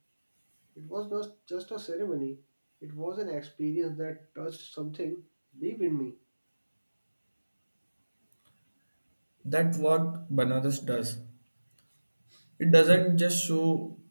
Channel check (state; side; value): inverted; both; correlation -1.00